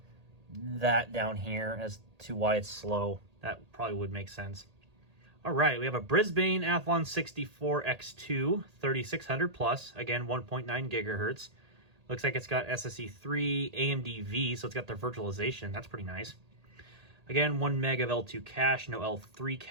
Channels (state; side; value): late; left; 1.8 ms